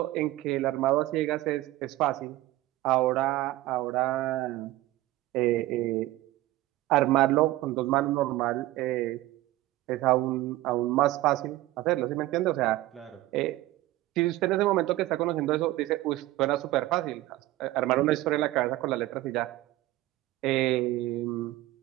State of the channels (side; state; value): left; quieter; 17.0 dB